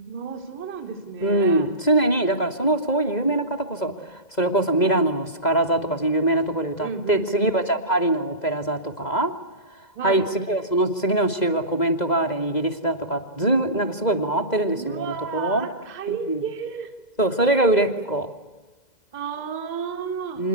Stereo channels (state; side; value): late; right; 2.0 ms